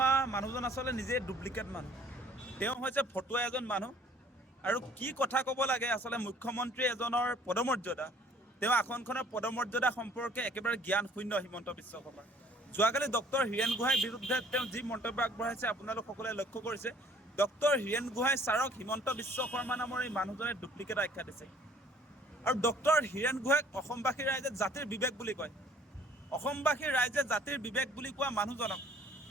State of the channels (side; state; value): both; normal; correlation 0.56